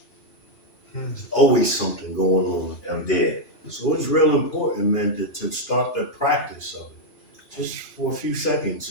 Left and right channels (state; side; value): late; right; 2.5 ms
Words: There's always something going on. I'm dead. So it's real important, man, to start the practice of it. Just for a few seconds.